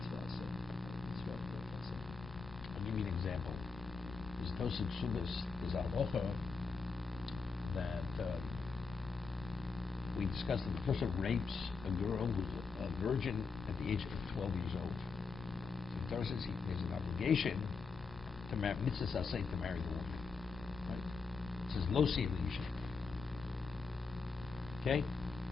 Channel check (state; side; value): quieter; right; 4.7 dB